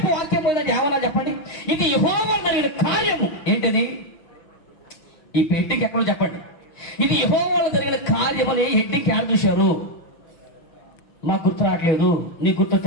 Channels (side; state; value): right; late; 6.0 ms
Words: వాక్యం పోయిందంటే ఏమన్నా చెప్పండి. ఇది యెహోవా జరిగిన కార్యము. ఏంటది? ఈ పెట్టికి ఎక్కడో చెప్పండి. ఇది యెహోవాలో జరిగిన కార్యమని హెడ్డింగ్ యాడ్ చూశారు. నాకు గుర్తు రావట్లేదు, నీకు